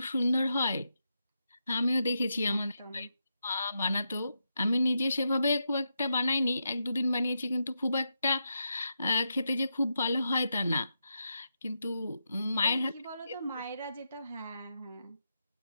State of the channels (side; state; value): both; inverted; correlation -0.85